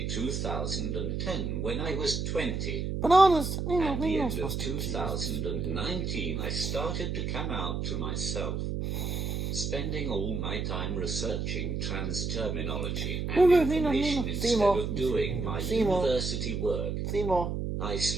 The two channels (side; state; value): right; noise; hum, 2 dB below the sound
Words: 2010 when I was 20. At the end of 2019 I started to come out to myself, spending all my time researching trans terminology and information instead of doing my university work. I